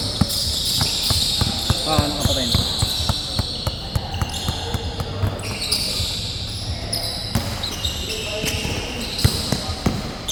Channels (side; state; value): both; identical; correlation 1.00